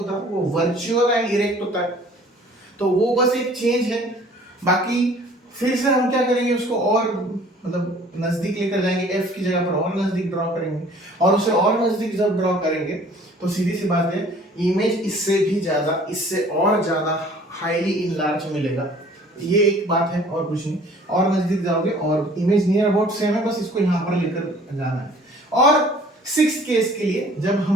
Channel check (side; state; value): both; normal; correlation 0.52